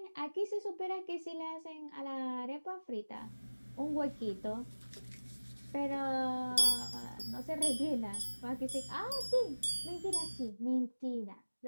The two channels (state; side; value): inverted; both; correlation -1.00